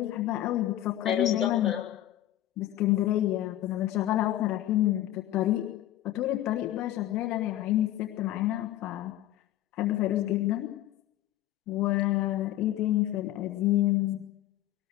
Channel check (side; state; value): right; quieter; 13.8 dB